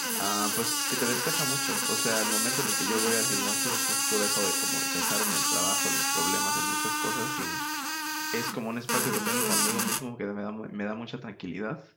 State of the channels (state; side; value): identical; both; correlation 1.00